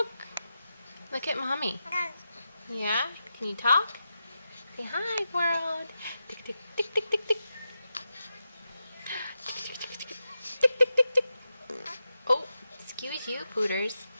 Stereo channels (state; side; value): inverted; both; correlation -0.89